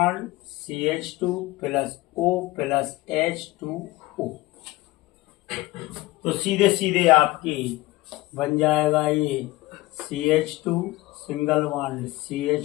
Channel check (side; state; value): right; quieter; 19.2 dB